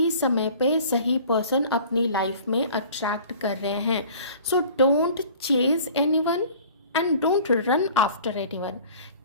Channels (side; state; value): both; inverted; correlation -0.47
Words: समय पे सही पर्सन अपनी लाइफ में अट्रैक्ट कर रहे हैं। So don't chase anyone and don't run after anyone.